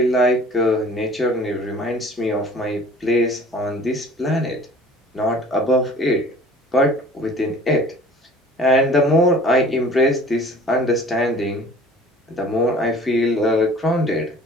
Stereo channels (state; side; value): normal; both; correlation 0.48